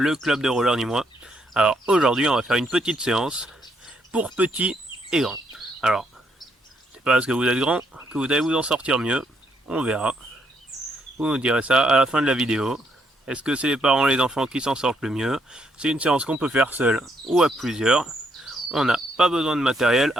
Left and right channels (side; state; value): both; normal; correlation 0.74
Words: club de roller nîmois. Alors aujourd'hui on va faire une petite séance pour petits et grands. Alors, c'est pas parce que vous êtes grand que vous allez vous en sortir mieux, on verra. Vous nous direz ça à la fin de la vidéo. Est-ce que c'est les parents et les enfants qui s'en sortent le mieux? C'est une séance qu'on peut faire seul ou à plusieurs. On n'a pas besoin de matériel